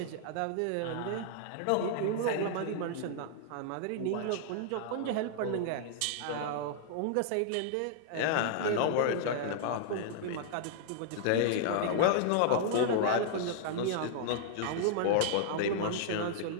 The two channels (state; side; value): different; both; correlation -0.01